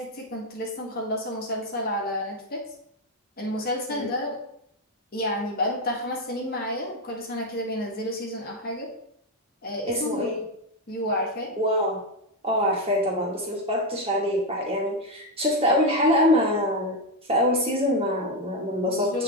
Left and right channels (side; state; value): both; normal; correlation 0.07